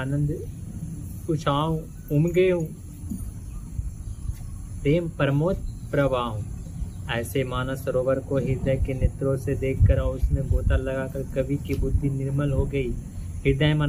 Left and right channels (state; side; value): identical; both; correlation 1.00